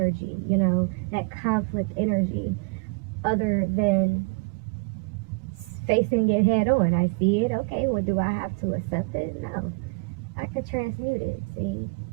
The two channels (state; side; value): quieter; left; 31.3 dB